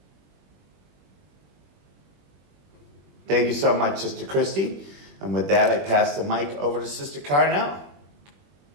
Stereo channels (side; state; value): left; late; 21 ms